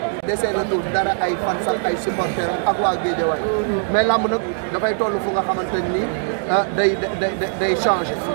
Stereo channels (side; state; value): left; silent; digital silence